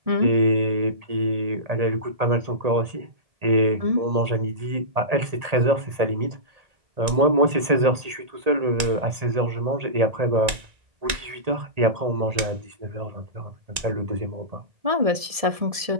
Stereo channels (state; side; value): late; left; 1.9 ms